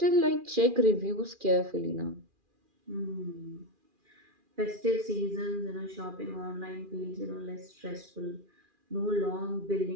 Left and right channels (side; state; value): left; late; 2.4 ms